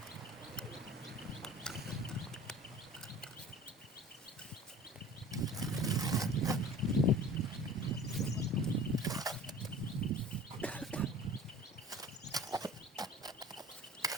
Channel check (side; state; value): both; normal; correlation 0.43